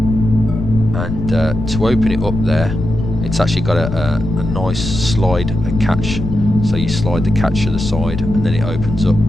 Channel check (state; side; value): noise; left; rumble, 5 dB below the sound